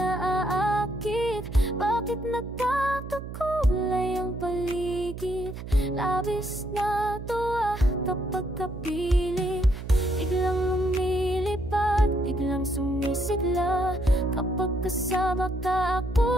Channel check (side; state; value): right; noise; hum, 10 dB below the sound